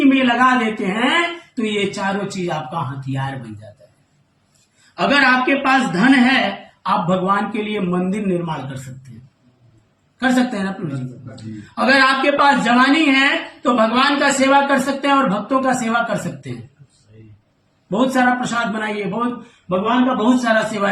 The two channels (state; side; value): identical; both; correlation 1.00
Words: में लगा देते हैं तो ये चारों चीज आपका हथियार बन जाता है। अगर आपके पास धन है, आप भगवान के लिए मंदिर निर्माण कर सकते हैं ना प्रभु जी। अगर आपके पास जवानी है तो भगवान का सेवा कर सकते हैं और भक्तों का सेवा कर सकते हैं। बहुत सारा प्रसाद बनाइए, बहुत भगवान का बहुत सारा सेवा